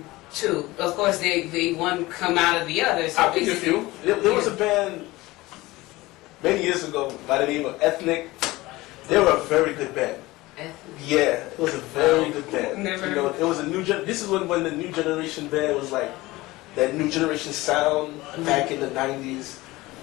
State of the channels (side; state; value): right; quieter; 19.8 dB